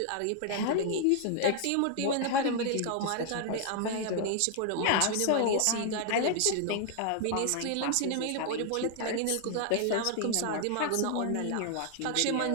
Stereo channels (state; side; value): different; both; correlation 0.00